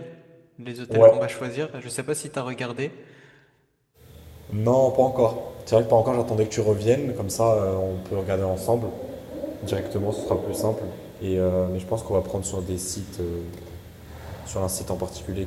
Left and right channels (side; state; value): both; identical; correlation 1.00